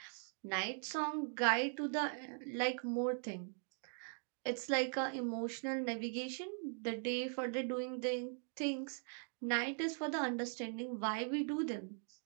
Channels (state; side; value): silent; left; 51 dB below the other